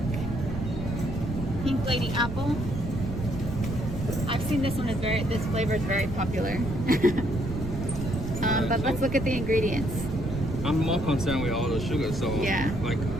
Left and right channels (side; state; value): right; noise; rumble, 6 dB below the sound